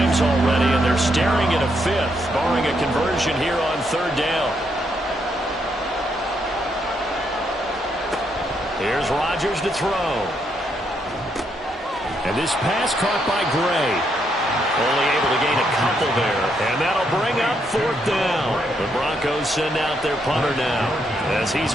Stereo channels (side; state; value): both; normal; correlation 0.77